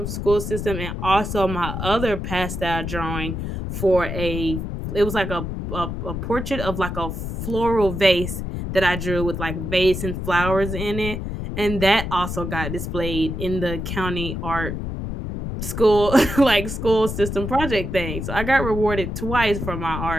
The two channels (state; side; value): noise; left; rumble, 5 dB below the sound